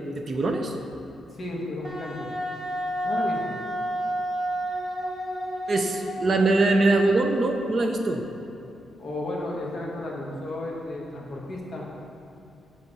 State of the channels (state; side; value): normal; both; correlation 0.86